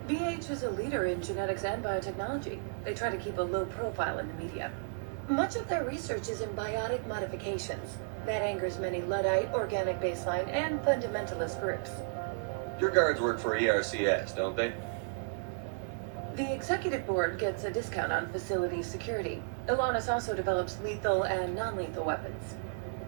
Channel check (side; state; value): left; silent; digital silence